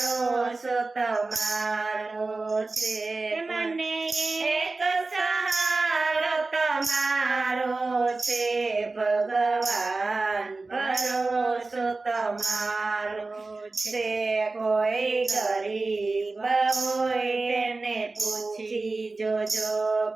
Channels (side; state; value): left; quieter; 3.5 dB